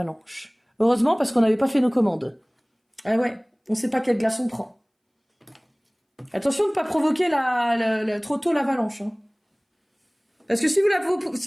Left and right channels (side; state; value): both; identical; correlation 1.00